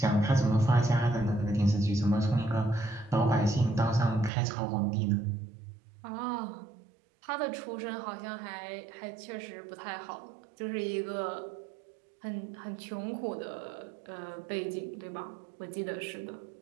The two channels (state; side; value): drops out; left; at 4.3 s